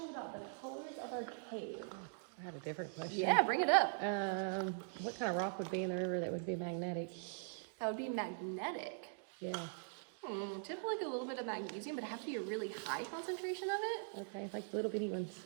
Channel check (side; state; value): left; silent; digital silence